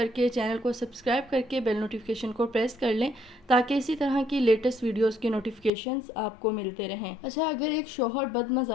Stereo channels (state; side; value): drops out; right; at 5.7 s